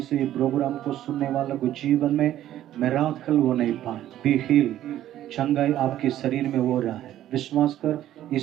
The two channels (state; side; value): quieter; left; 12.6 dB